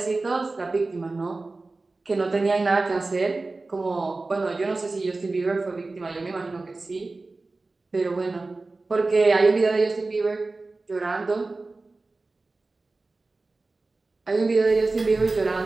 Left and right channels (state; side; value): quieter; left; 3.4 dB